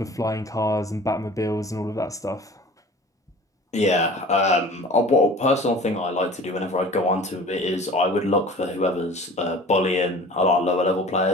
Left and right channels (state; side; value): normal; both; correlation 0.43